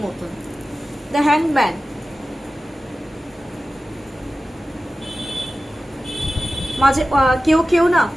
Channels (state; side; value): normal; both; correlation 0.95